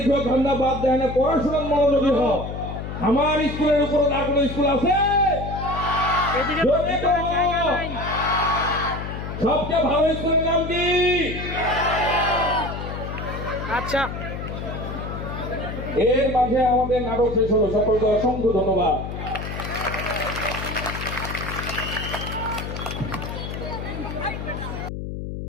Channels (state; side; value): noise; left; hum, 7 dB below the sound